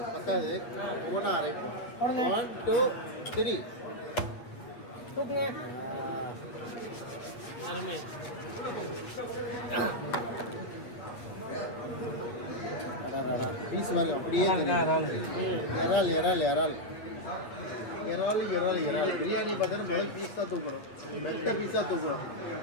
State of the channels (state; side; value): late; right; 8.8 ms